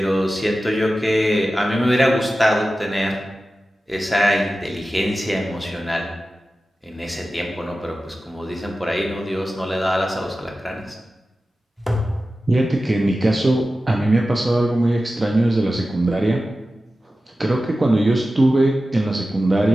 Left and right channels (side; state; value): both; normal; correlation 0.94